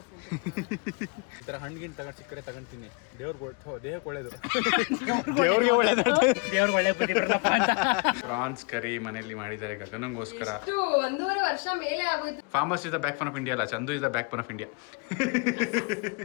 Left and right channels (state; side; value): quieter; right; 33.0 dB